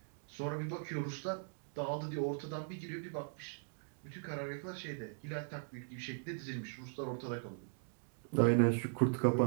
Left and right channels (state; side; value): silent; left; digital silence